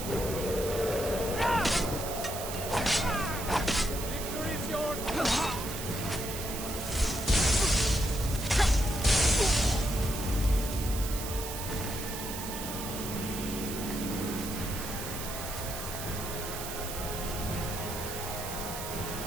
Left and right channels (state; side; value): noise; right; hiss, 7 dB below the sound